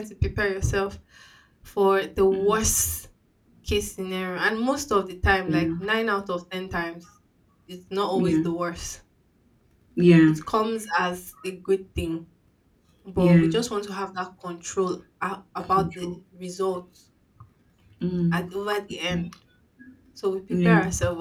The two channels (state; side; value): identical; both; correlation 1.00